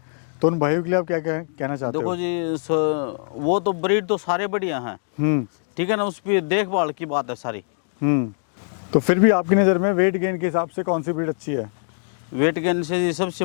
तो उन भाइयों के लिए आप क्या कहना चाहते हो? देखो जी वो तो ब्रीड तो सारे बढ़िया हैं, ठीक है ना, उस पर देखभाल की बात है सारी। तो फिर भी आपकी नज़र में वेट गेन के हिसाब से कौन सी ब्रीड अच्छी है? वेट गेन से जी सबसे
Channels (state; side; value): silent; right; digital silence